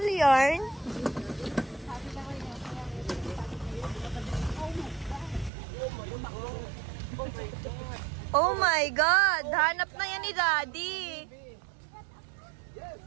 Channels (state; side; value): drops out; left; at 5.5 s